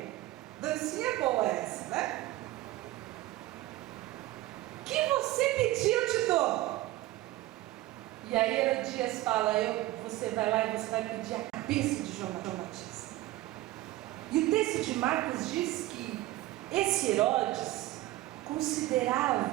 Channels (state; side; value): quieter; left; 17.0 dB